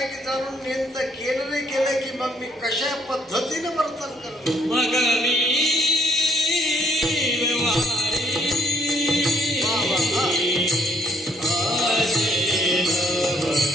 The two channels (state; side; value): normal; both; correlation 0.67